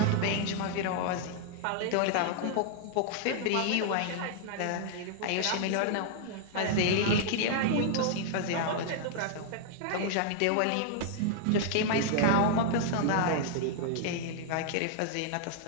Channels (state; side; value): different; both; correlation 0.00